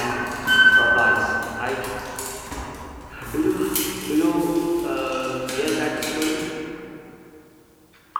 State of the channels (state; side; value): identical; both; correlation 1.00